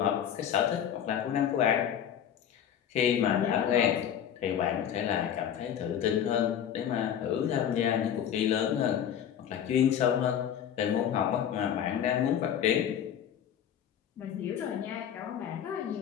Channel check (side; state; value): right; quieter; 9.3 dB